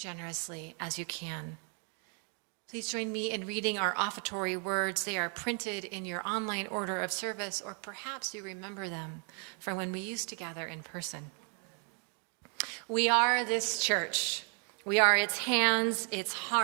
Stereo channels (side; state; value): left; quieter; 38.8 dB